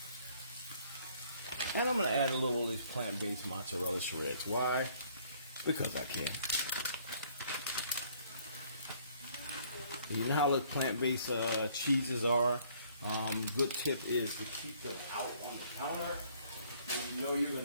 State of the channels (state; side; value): inverted; both; correlation -0.61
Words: And I'm going to add a little of these plant-based mozzarella shreds. Why? Because I can. You know how the plant-based cheeses are. Good tip is to keep them out on the counter when you know you're going